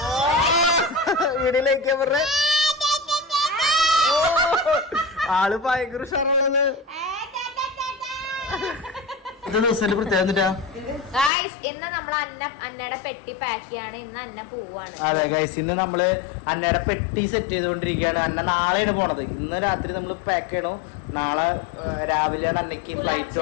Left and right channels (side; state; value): right; drops out; at 11.3 s